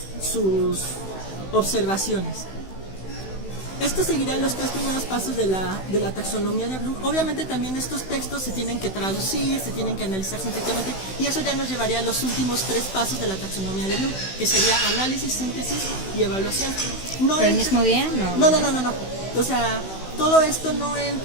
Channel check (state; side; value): late; right; 16 ms